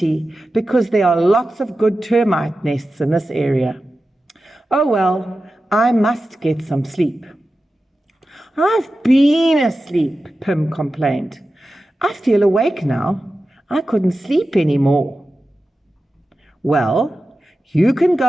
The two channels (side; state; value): both; normal; correlation 0.93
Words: because there are lots of good termite nests in this area. Oh well, I must get some sleep." "I've been asleep," Pim complained. "I feel awake now. I couldn't sleep anymore." "Well, you can